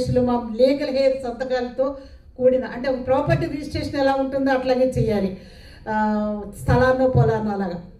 మా లీగల్ హెయిర్ సంతకాలతో కూడిన, అంటే ప్రాపర్టీ రిజిస్ట్రేషన్ ఎలా ఉంటుందో అట్లాగే చేయాలి, స్థలాన్నో పొలాన్నో అలాగా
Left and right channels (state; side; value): identical; both; correlation 1.00